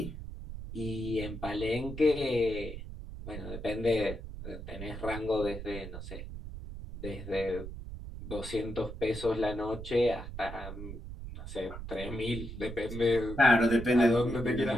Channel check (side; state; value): right; noise; rumble, 9 dB below the sound